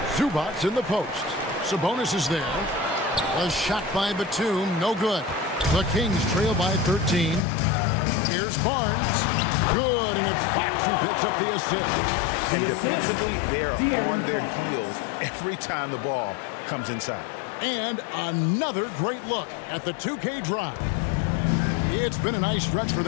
Zubac in the post. Sabonis is there. A shot by Batum, no good. The Kings trail by 13. Here's Barnes. Good, and it's Fox who picks up the assist. And defensively, they are on their heels every time the ball comes inside. And another great look at the 2K drive. It's been a nice stretch for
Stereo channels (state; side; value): drops out; right; at 7.4 s